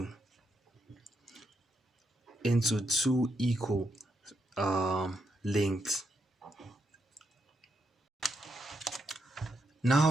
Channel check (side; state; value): both; normal; correlation 0.80